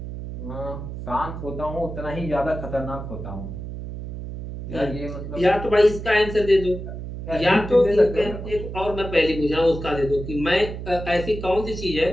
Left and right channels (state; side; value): noise; right; hum, 8 dB below the sound